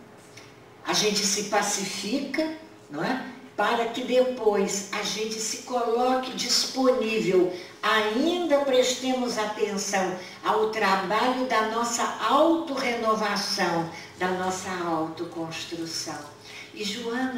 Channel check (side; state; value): both; identical; correlation 1.00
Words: se pacifica, não é? Para que depois a gente se coloque disponível, ainda prestemos atenção ao trabalho da nossa autorrenovação, da nossa autoconstrução. E